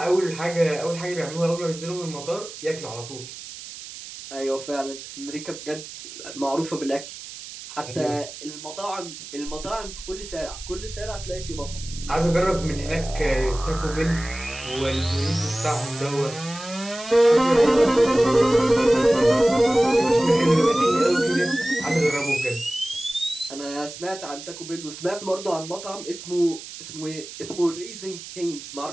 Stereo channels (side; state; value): right; noise; hiss, 13 dB below the sound